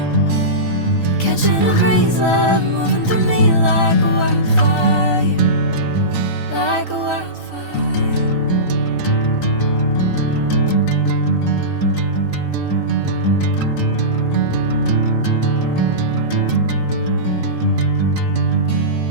Catching a crazy love, moving through me like a wildfire, like a wildfire.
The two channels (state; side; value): late; right; 3.9 ms